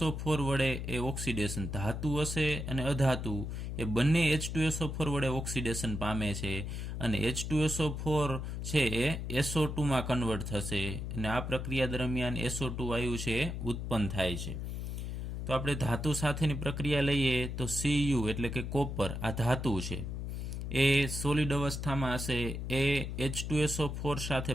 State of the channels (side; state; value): left; noise; hum, 4 dB below the sound